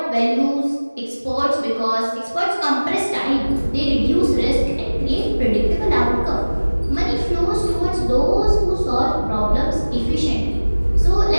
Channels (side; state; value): both; inverted; correlation -1.00